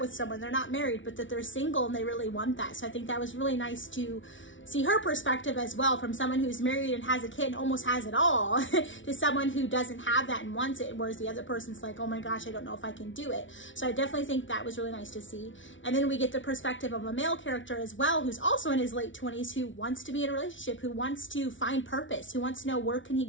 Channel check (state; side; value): late; right; 0.56 ms